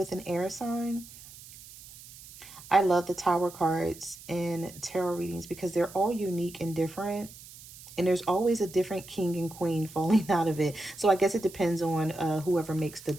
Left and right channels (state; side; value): noise; right; hiss, 18 dB below the sound